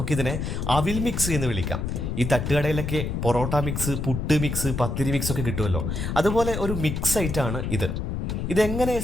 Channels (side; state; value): left; noise; rumble, 3 dB below the sound